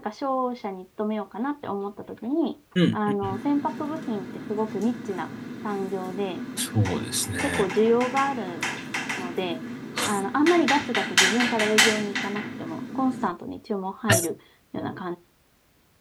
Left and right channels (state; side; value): identical; both; correlation 1.00